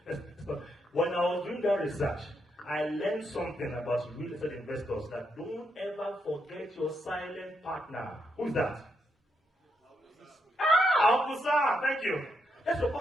when I was doing that research, I learned something about real estate investors, that don't ever forget your silent partner. Who's that? Amusa, thank you. That's your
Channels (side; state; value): both; normal; correlation 0.79